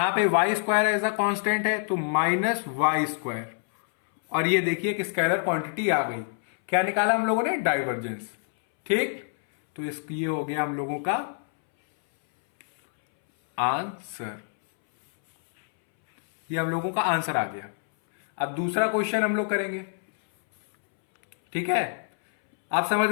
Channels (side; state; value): right; silent; 61 dB below the other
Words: पे y² एज अ कांस्टेंट है तो माइनस y², और ये देखिए कि स्केलर क्वांटिटी आ गई। क्या निकाला हम लोगों ने? डाइवर्जेंस, ठीक। तो ये हो गया हम लोगों का आंसर, ये हम लोगों का आंसर आ गया। अब दूसरा क्वेश्चन हम लोग करेंगे, ठीक है। आप समझ